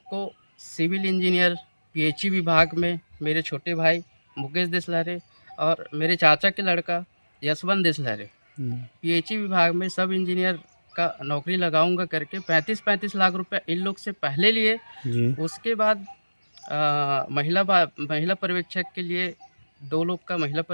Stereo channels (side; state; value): both; inverted; correlation -1.00